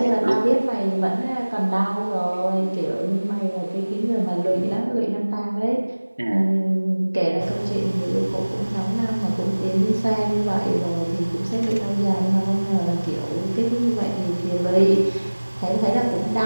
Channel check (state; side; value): inverted; both; correlation -1.00